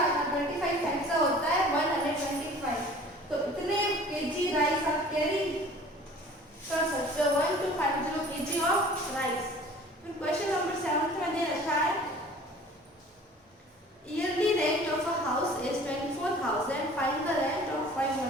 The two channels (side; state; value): both; normal; correlation 0.47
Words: 25 ऐसा होता है 125। तो इतने केजी राइस आप कैरी कर सकते हो, 1250 kg ऑफ राइस। फिर क्वेश्चन नंबर 7 में दे रखा है yearly rent of a house is 24,000, find the rent of 5